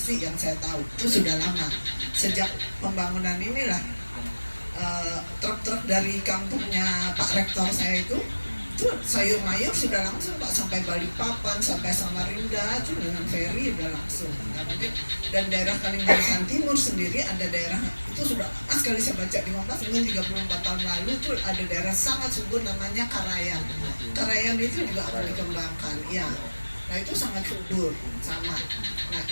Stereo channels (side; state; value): both; inverted; correlation -1.00